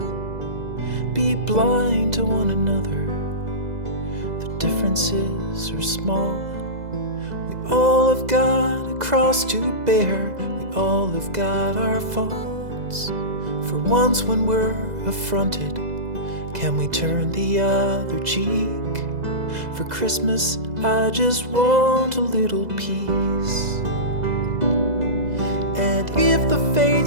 Be blind to one another, the differences are small. We all have got a cross to bear, we all have got our faults. For once when we're affronted, can we turn the other cheek? For Christmas I just want a little peace. And if the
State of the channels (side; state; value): left; late; 2.0 ms